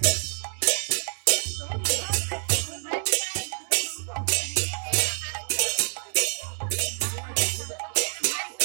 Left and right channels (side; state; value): left; silent; 60 dB below the other